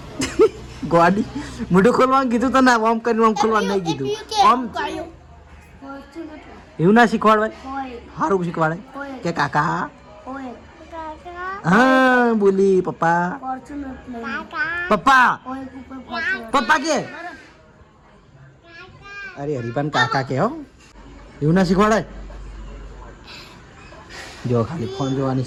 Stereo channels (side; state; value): both; identical; correlation 1.00